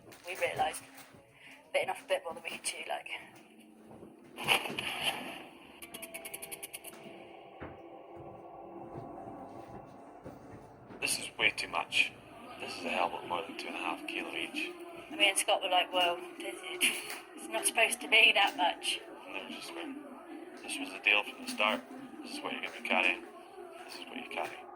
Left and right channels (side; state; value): both; identical; correlation 1.00